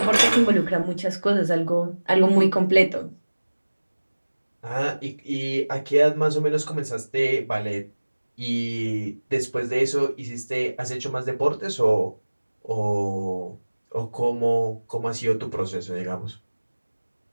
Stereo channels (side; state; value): both; inverted; correlation -1.00